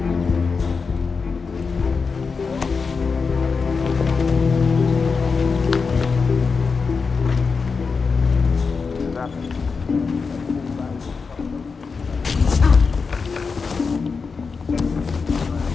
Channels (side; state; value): right; quieter; 5.0 dB